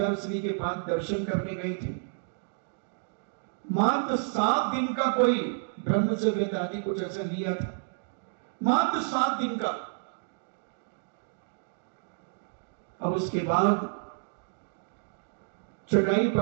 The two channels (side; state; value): left; silent; digital silence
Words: श्री के पास दर्शन करने गई थी। मात्र 7 दिन का कोई ब्रह्मचर्य आदि कुछ ऐसा लिया था, मात्र 7 दिन का। अब उसके बाद चटाई